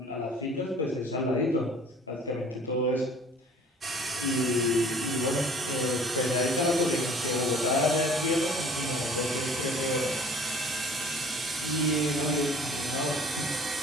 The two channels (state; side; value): normal; both; correlation 0.50